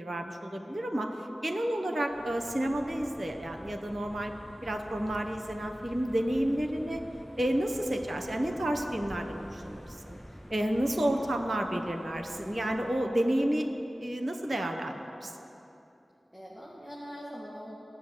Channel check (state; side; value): normal; both; correlation 0.96